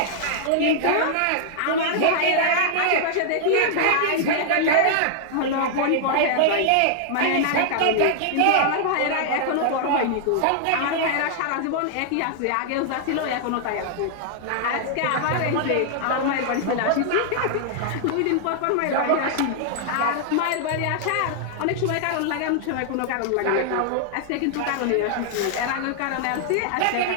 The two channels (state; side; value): different; both; correlation -0.01